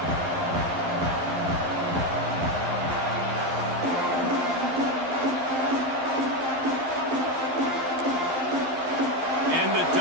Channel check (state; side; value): late; left; 11 ms